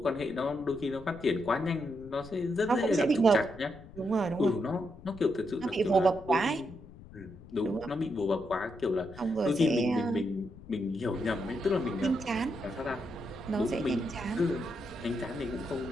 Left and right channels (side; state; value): left; noise; rumble, 18 dB below the sound